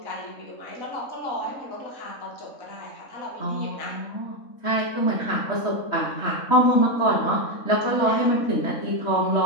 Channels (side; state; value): right; late; 3.6 ms